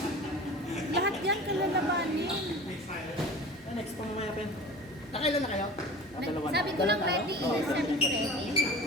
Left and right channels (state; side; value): normal; both; correlation 0.37